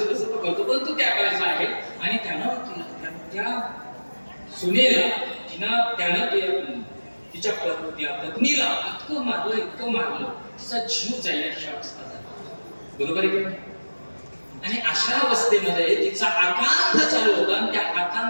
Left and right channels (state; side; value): inverted; both; correlation -1.00